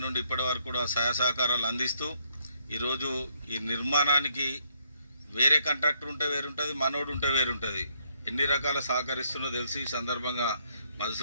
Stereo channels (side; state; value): both; inverted; correlation -0.72